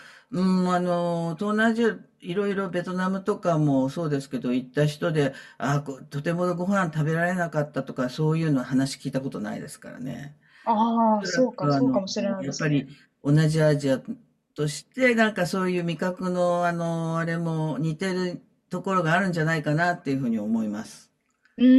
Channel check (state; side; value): identical; both; correlation 1.00